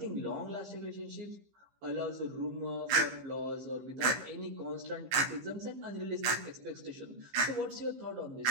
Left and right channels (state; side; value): late; left; 15 ms